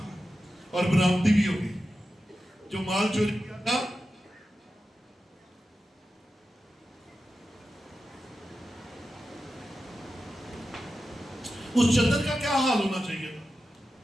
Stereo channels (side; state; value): both; normal; correlation 0.92